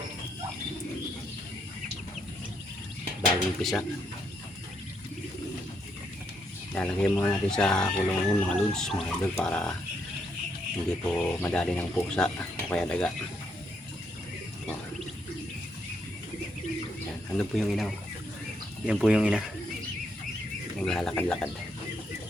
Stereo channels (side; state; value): both; normal; correlation 0.76